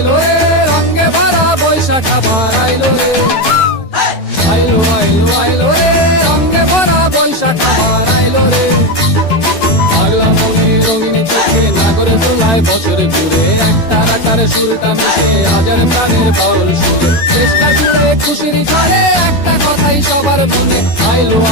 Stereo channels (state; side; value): late; right; 12 ms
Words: আইলো রে রঙে ভরা বৈশাখ আবার আইলো রে আইলো আইলো আইলো রে রঙে ভরা বৈশাখ আবার আইলো রে পাগলা মনে রঙিন চোখে নাগরে তোমায় বছরে ঘুরে একটা আকারে সুরটা মিশে আজের প্রাণে বাউল সুরে চেষ্টা করে খুশির করে একটা কথাই সবার মনে আইলো